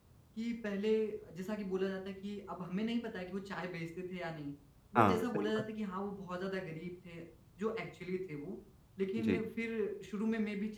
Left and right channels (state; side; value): identical; both; correlation 1.00